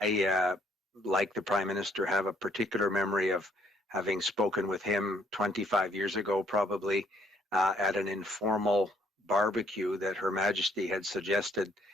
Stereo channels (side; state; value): both; normal; correlation 0.66